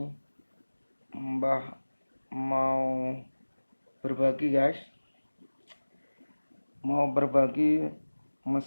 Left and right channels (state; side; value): inverted; both; correlation -1.00